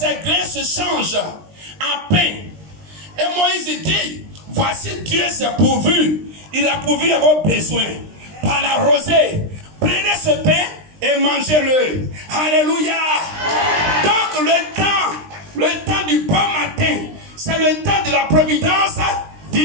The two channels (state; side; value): late; left; 20 ms